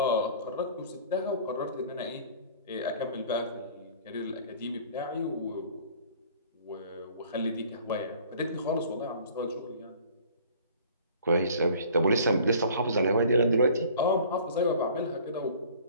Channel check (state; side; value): inverted; both; correlation -0.49